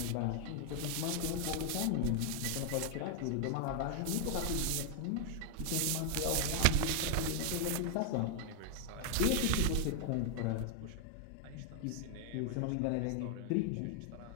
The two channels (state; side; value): different; both; correlation 0.00